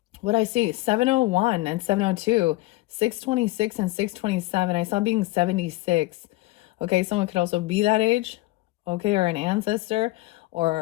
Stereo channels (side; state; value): right; quieter; 19.7 dB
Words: I see, 701 and 702, 626 and 627. I saw being 76. Okay, someone could also be that age, okay, or an ancestor,